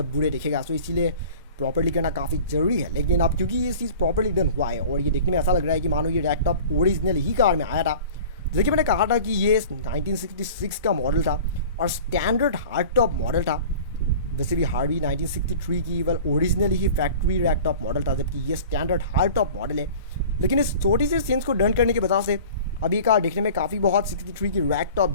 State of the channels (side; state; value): both; inverted; correlation -0.42